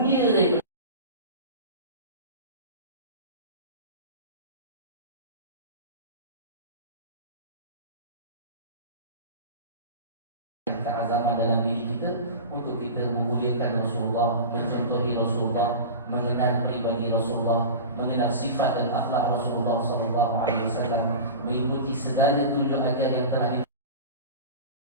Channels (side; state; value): both; inverted; correlation -0.31